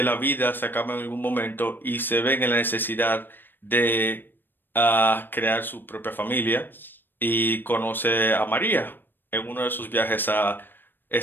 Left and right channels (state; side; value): late; right; 0.094 ms